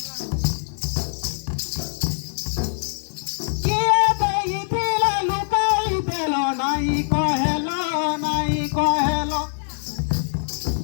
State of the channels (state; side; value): silent; right; digital silence